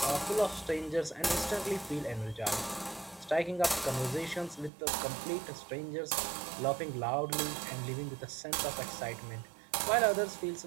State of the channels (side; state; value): left; drops out; at 4.7 s